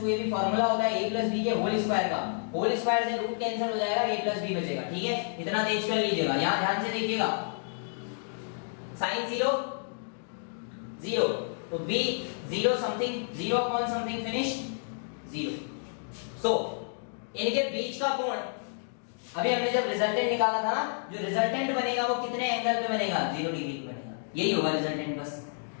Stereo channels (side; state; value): right; silent; digital silence